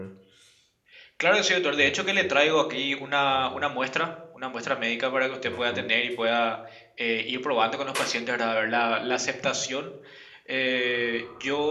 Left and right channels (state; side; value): identical; both; correlation 1.00